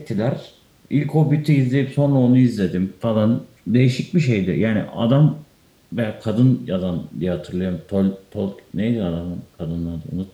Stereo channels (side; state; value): both; identical; correlation 1.00